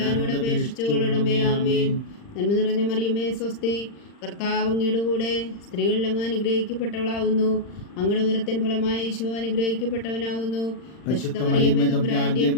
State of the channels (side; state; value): right; late; 40 ms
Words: അപേക്ഷിച്ചുകൊള്ളണമേ. ആമേൻ. നന്മ നിറഞ്ഞ മറിയമേ സ്വസ്തി, കർത്താവ് അങ്ങയുടെ കൂടെ സ്ത്രീകളിൽ അങ്ങ് അനുഗ്രഹിക്കപ്പെട്ടവളാവുന്നു. അങ്ങയുടെ ഉദരത്തിൻ ഫലമായി ഈശോ അനുഗ്രഹിക്കപ്പെട്ടവനാവുന്നു. പരിശുദ്ധ മറിയമേ തമ്പുരാന്റെ